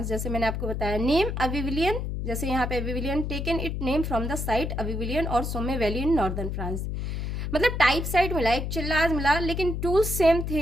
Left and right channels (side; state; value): left; noise; hum, 3 dB below the sound